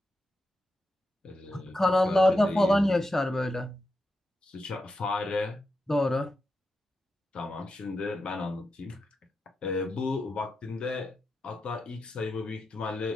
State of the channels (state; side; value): normal; both; correlation 0.88